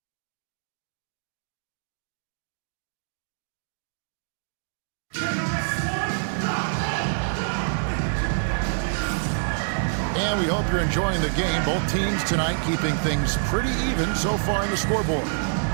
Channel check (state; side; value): silent; left; digital silence